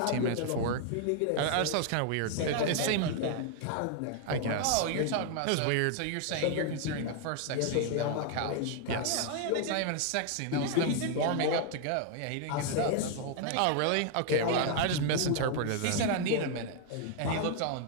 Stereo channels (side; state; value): both; different; correlation 0.00